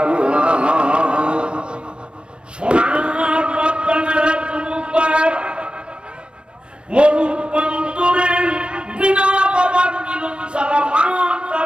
সোনার বাচ্চারা তোমার মরুর প্রান্তরে বিনা বাবার মিলন ছাড়া মা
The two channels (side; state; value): left; late; 0.057 ms